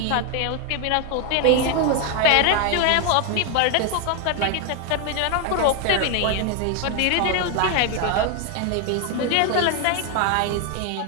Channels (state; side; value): different; both; correlation 0.01